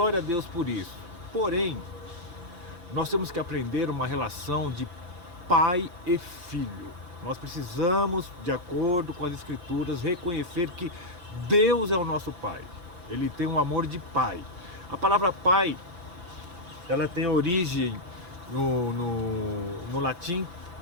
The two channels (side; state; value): left; late; 6.0 ms